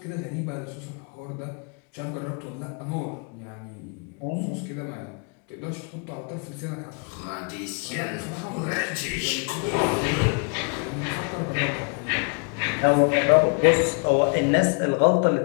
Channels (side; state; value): right; quieter; 36.4 dB